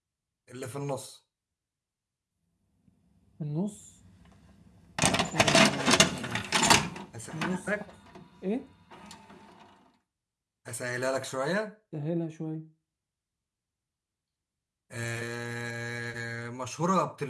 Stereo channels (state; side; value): identical; both; correlation 1.00